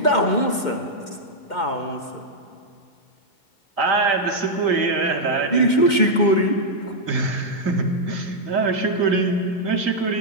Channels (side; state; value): right; late; 2.2 ms